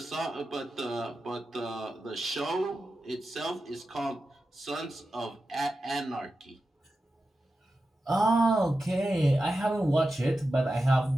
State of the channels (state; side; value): normal; both; correlation 0.91